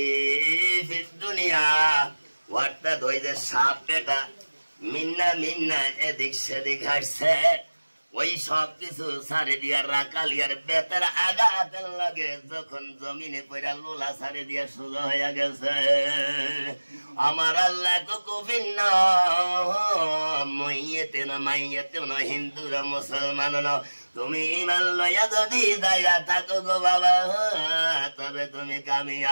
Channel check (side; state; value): both; inverted; correlation -1.00